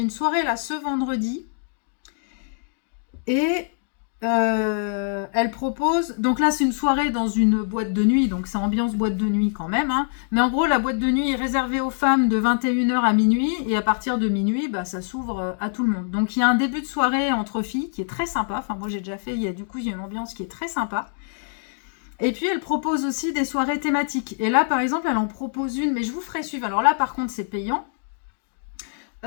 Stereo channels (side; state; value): right; silent; digital silence